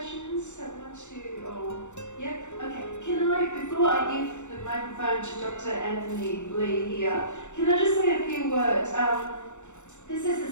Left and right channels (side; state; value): right; late; 0.84 ms